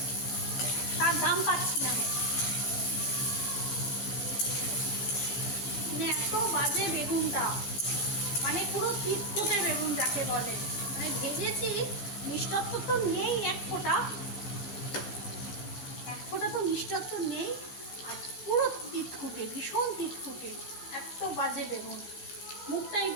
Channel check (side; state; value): right; late; 15 ms